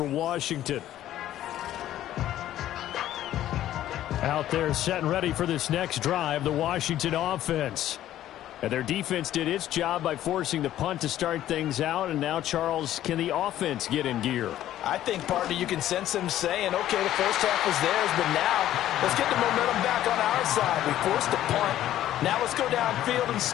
Washington. Out there set and ready for this next drive, the Washington offense. And their defense did its job by forcing the punt to start things out. And now, Charles, can the offense get in gear? I think, partner, you can sense them saying, okay, the first half was theirs, but now let's get the momentum back on our side. We forced a punt. Now let's go downfield and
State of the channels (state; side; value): quieter; right; 12.8 dB